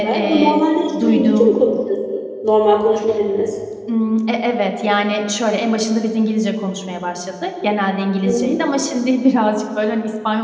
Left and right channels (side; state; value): both; identical; correlation 1.00